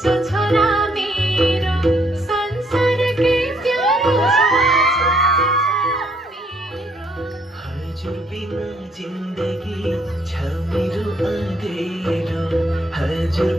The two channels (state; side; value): normal; both; correlation 0.69